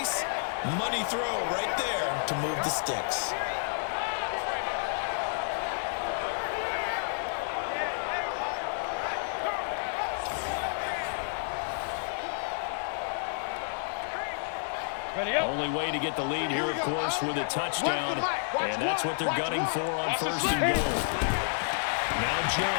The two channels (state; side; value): silent; right; 58 dB below the other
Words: Money throw right there to move the sticks. Only way to get the lead here, of course, with a touchdown. And that's what they're gunning for on 1st and goal. Now